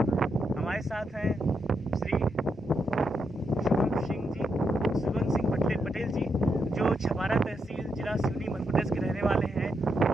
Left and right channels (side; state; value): both; normal; correlation 0.82